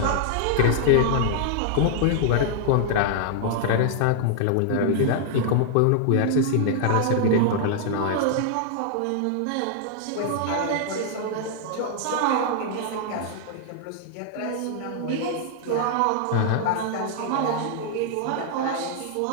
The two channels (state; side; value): different; both; correlation -0.01